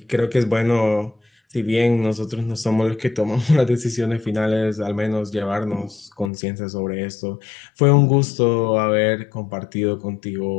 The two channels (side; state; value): right; drops out; at 6.3 s